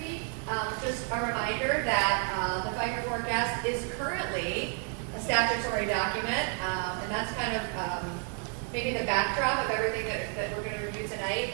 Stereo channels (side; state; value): left; quieter; 39.8 dB